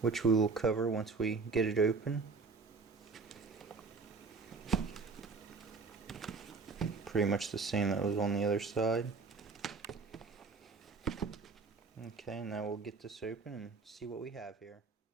which we will cover once we get it open. Pretty much the same that was on the other side. Okay, now we'll get this open and see what we have here.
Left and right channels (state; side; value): quieter; left; 4.5 dB